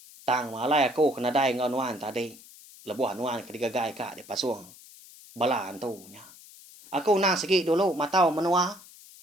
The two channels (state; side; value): noise; left; hiss, 21 dB below the sound